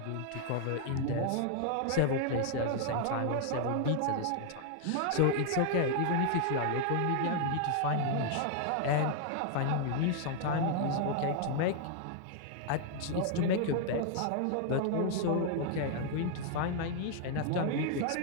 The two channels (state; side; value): different; both; correlation 0.00